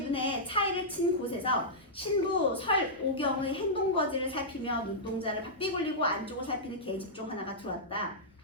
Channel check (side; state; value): both; normal; correlation -0.11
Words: 눈에 차이를 친 곳에서 신부 설오경의 행동거지를 살피며 눈동자를 바삐 굴리고 안쪽을 살피는 계집종 하나가 들어왔다.